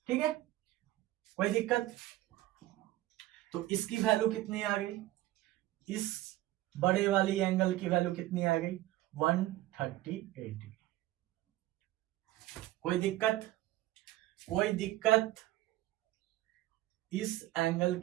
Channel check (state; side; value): quieter; left; 16.3 dB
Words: ठीक है, कोई दिक्कत? तो इसकी वैल्यू कितनी आ गई, इस बड़े वाली एंगल की वैल्यू कितनी आ गई, 138 डिग्री। कोई दिक्कत? कोई दिक्कत? इस एंगल